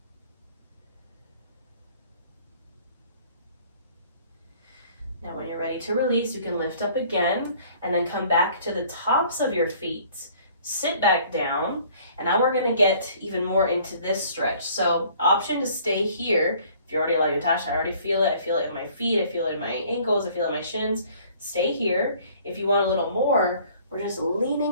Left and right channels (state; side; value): inverted; both; correlation -0.55